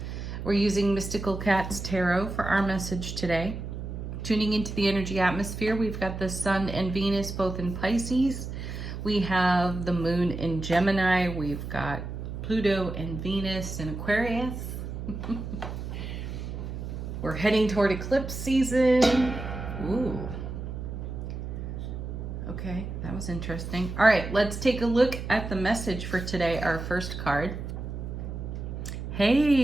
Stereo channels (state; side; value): noise; right; hum, 7 dB below the sound